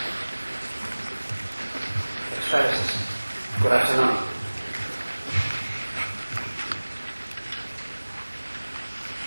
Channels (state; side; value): inverted; both; correlation -1.00